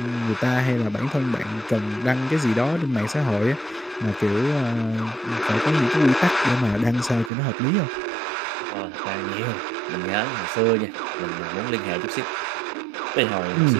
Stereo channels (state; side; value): drops out; left; at 7.3 s